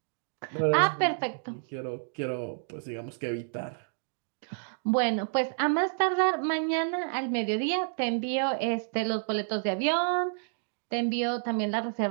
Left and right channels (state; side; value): silent; left; digital silence